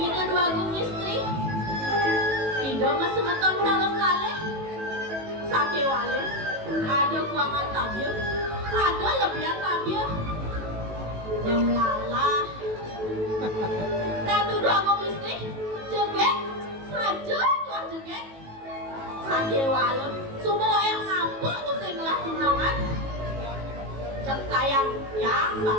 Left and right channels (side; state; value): left; late; 18 ms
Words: itu dua gung istri. Ido mesemeton sarung kaleh. Sake wale. Ada kuangan tabir. Ada lebihan tabir. Yang lalah. Ratu dua gung istri. Joget. Saja tuah joget. Sake wale. Semua yang ngapuk tuh singlah tunangan. Cekayang yang